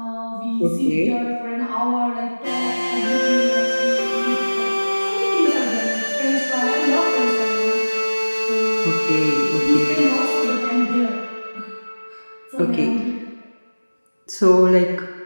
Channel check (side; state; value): both; inverted; correlation -1.00